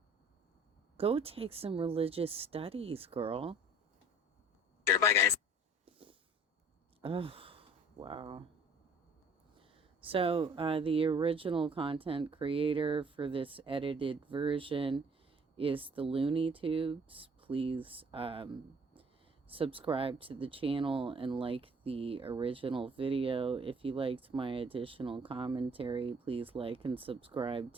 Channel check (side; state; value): both; normal; correlation 0.53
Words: Go take some religious studies, girl. Sure, bye, guys. Oh, wow. So, the original content creator for this edited version is the Looney Tunes. Please subscribe to the channel and like the original video. If you liked my additional commentary, please like and subscribe